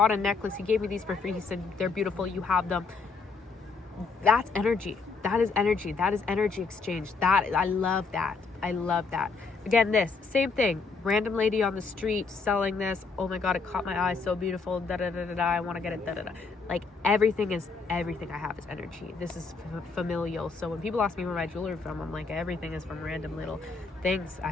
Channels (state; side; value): quieter; right; 4.6 dB